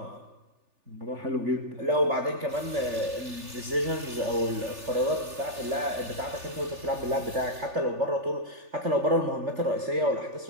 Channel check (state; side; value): late; left; 3.4 ms